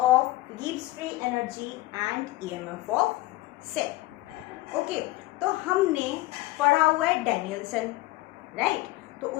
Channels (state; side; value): quieter; right; 18.7 dB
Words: of Gibbs free energy and EMF of cell. Okay, तो हमने पढ़ा हुआ है डैनियल्सन, राइट। तो